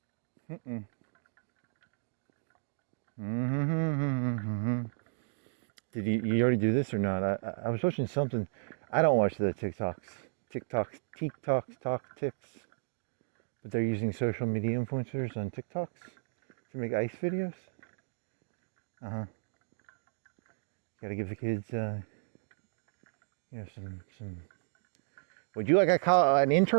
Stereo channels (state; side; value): silent; left; digital silence